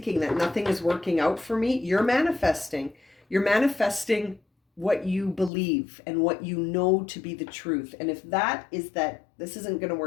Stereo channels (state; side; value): drops out; right; at 5.5 s